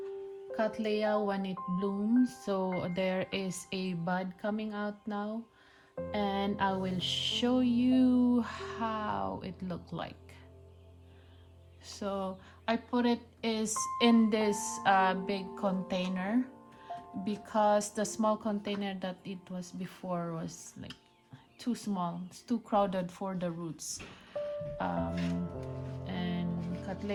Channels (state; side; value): identical; both; correlation 1.00